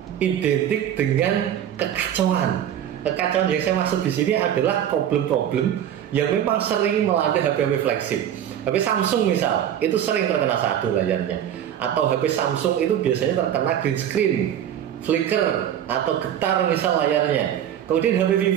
identik dengan kekacauan. Kekacauan yang saya maksud di sini adalah problem-problem yang memang sering melanda HP-HP flagship. HP Samsung misal, itu sering terkena sadu layarnya. Atau HP Samsung itu biasanya terkena green screen, flicker, atau getar misal layarnya. Kemudian HP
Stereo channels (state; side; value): quieter; left; 10.3 dB